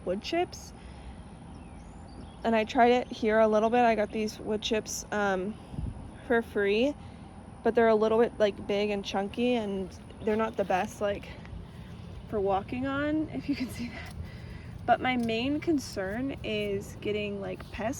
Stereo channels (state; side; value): identical; both; correlation 1.00